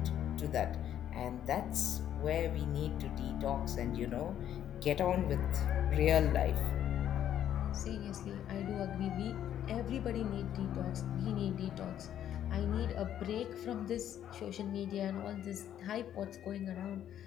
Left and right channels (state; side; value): quieter; right; 10.6 dB